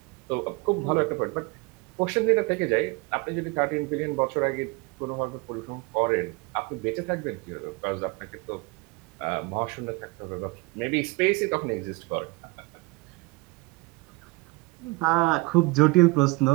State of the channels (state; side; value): quieter; left; 25.1 dB